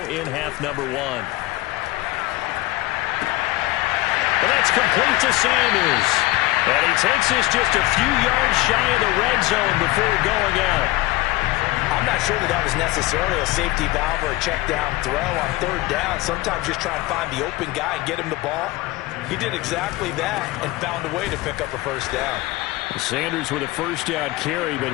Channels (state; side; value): quieter; right; 18.9 dB